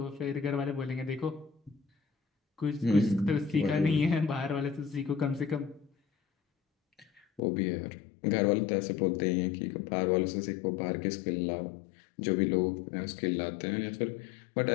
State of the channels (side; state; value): right; drops out; at 7.4 s